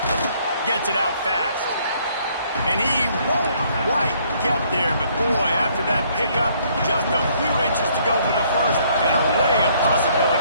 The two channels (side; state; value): both; inverted; correlation -0.65